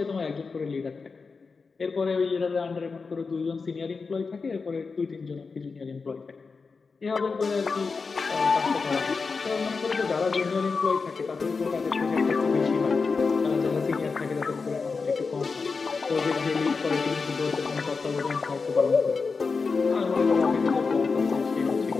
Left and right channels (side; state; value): right; quieter; 4.7 dB